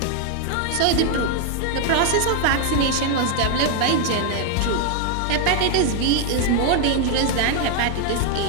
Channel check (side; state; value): both; different; correlation 0.00